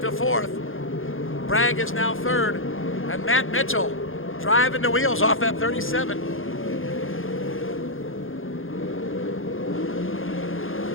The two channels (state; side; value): late; right; 0.59 ms